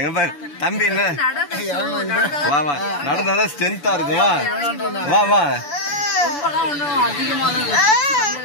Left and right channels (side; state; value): right; late; 6.9 ms